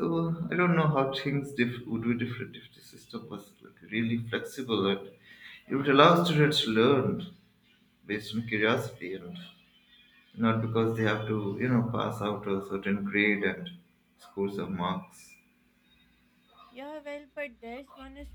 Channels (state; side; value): identical; both; correlation 1.00